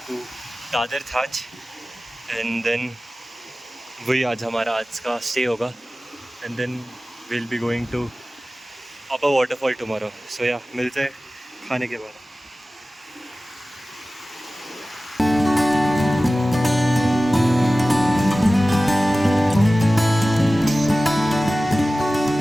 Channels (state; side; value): normal; both; correlation 0.96